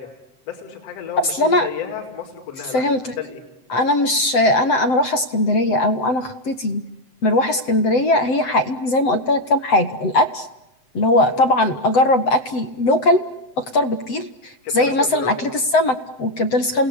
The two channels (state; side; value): late; right; 7.8 ms